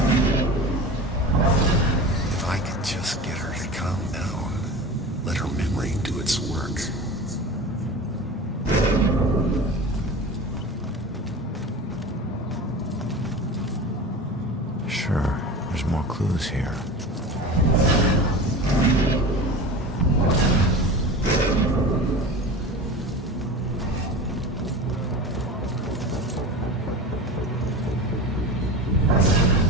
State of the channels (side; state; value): both; normal; correlation 0.32